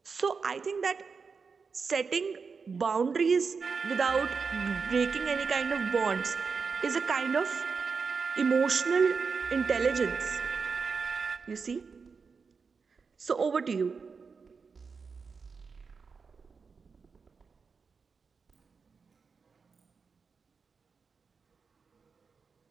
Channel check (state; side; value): quieter; left; 5.2 dB